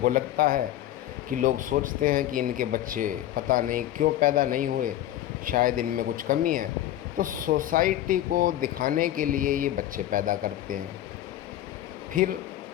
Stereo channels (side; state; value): right; quieter; 13.1 dB